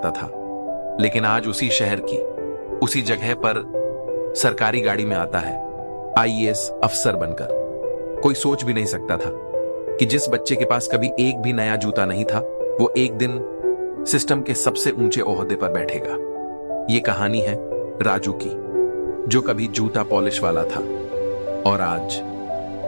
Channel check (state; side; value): inverted; both; correlation -1.00